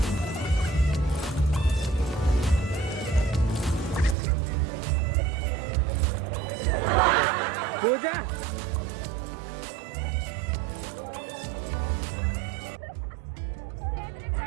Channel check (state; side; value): drops out; left; at 4.2 s